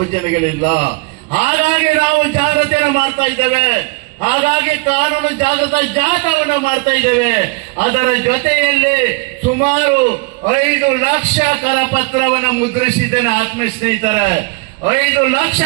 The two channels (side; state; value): left; quieter; 27.0 dB